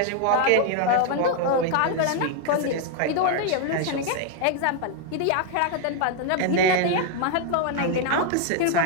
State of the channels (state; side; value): different; both; correlation 0.00